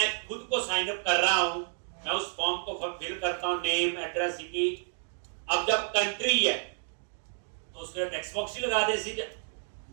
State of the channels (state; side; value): silent; left; digital silence